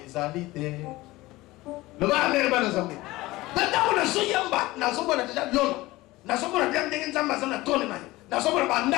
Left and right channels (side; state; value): right; quieter; 19.2 dB